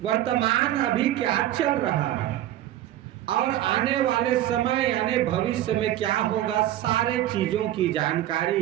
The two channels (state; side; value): quieter; left; 13.3 dB